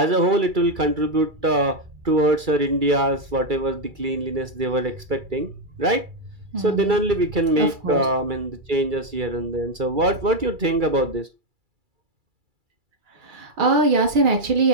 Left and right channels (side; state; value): left; late; 2.3 ms